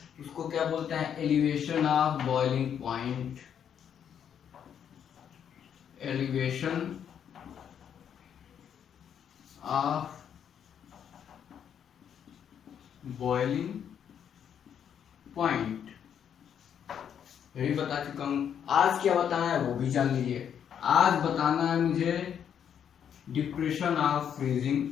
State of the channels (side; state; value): right; quieter; 8.5 dB